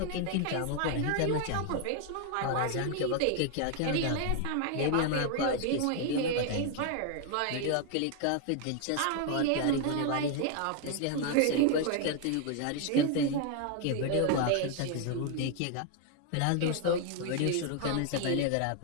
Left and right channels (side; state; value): both; different; correlation 0.00